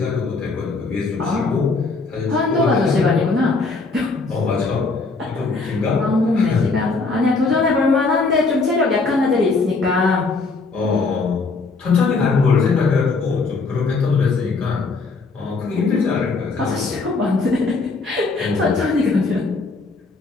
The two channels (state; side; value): quieter; right; 4.0 dB